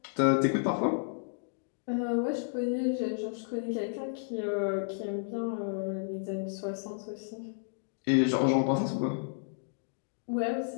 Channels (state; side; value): silent; right; digital silence